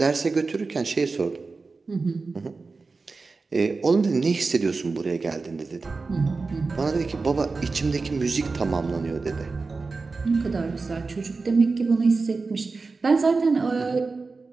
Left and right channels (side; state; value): left; quieter; 4.1 dB